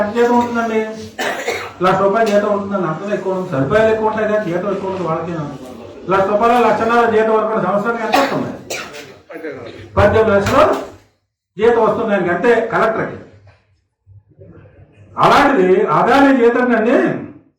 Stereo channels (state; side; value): identical; both; correlation 1.00